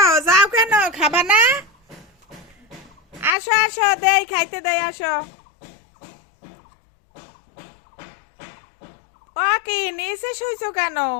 যাও, কেন খাবা না? আসো আসো, দেই খাইতে দেই, আসো। ও কি নিচে শুইছো কেন?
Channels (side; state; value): right; drops out; at 3.4 s